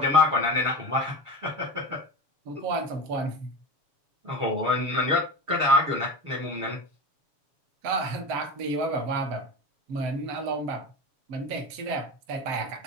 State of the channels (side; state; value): left; late; 7.1 ms